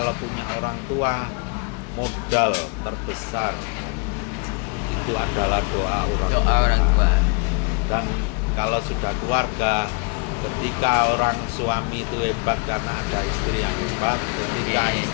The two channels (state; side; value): quieter; right; 33.0 dB